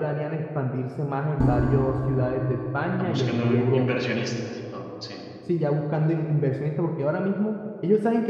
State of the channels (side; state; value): both; identical; correlation 1.00